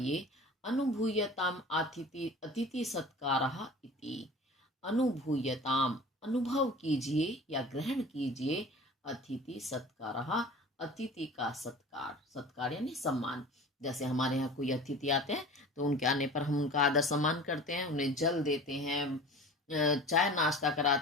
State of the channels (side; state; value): both; normal; correlation 0.40